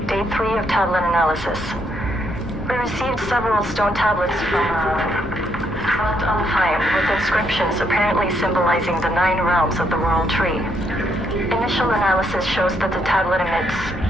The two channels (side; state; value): both; normal; correlation 0.74